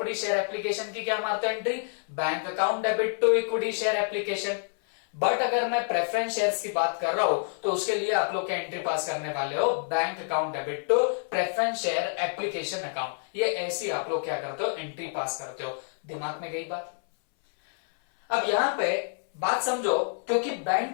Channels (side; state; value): right; silent; 59 dB below the other